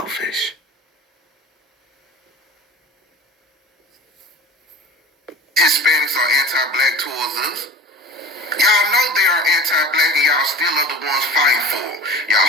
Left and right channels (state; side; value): normal; both; correlation 0.38